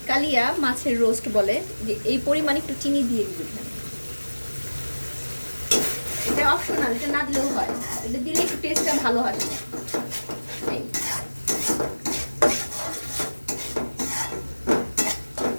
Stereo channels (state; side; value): inverted; both; correlation -1.00